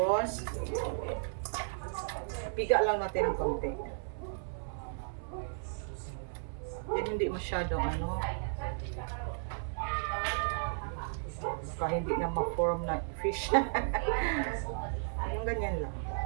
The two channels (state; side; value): silent; left; 55 dB below the other